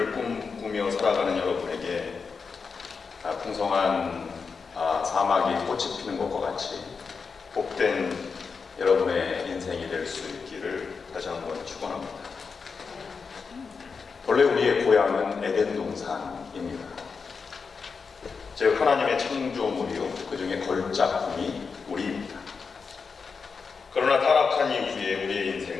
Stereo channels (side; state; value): right; quieter; 5.2 dB